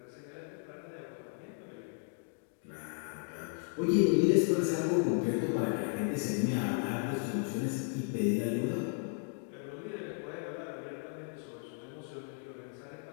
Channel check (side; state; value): right; silent; 55 dB below the other